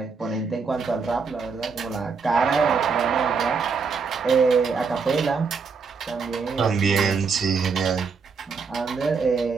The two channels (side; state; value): left; quieter; 5.2 dB